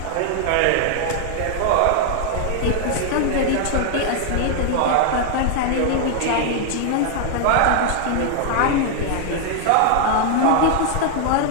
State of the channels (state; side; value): different; both; correlation 0.00